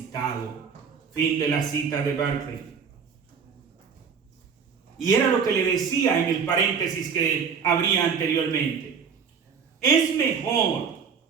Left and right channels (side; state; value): left; quieter; 6.4 dB